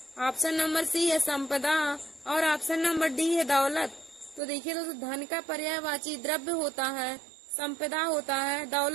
ऑप्शन नंबर सी है संपदा और ऑप्शन नंबर डी है दौलत। तो देखिए दोस्तों, धन का पर्यायवाची द्रव्य होता है, संपदा होता है,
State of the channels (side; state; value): left; drops out; at 4.4 s